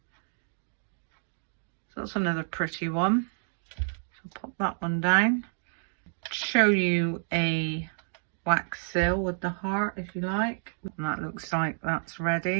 So that's another pretty one. So pop that one down. Show you a wax seal with the heart if you like. And that looks like that's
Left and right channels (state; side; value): silent; left; digital silence